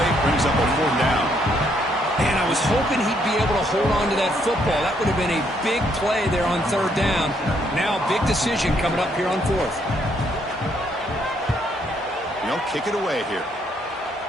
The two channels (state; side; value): normal; both; correlation 0.71